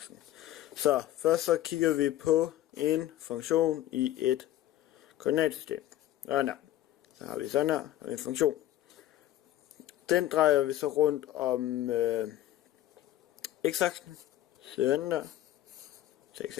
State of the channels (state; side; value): quieter; right; 13.6 dB